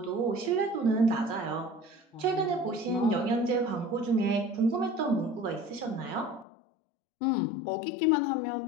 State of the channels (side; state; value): right; drops out; at 6.5 s